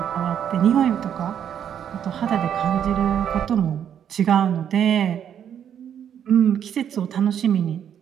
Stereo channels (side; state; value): left; quieter; 9.0 dB